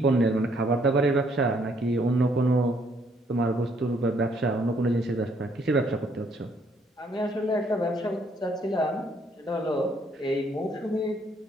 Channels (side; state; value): both; normal; correlation 0.68